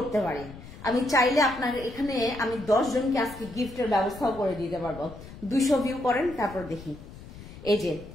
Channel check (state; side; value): noise; left; rumble, 15 dB below the sound